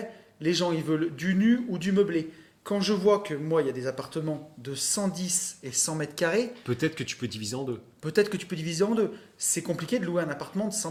les gens ils veulent du nu ou du meublé? Quand je vois que moi, il y a des appartements de 110 et 100 mètres carrés, Peut-être que tu peux diviser en deux. peut-être que tu peux diviser en deux. C'est compliqué de louer un appartement de 100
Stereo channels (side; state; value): both; identical; correlation 1.00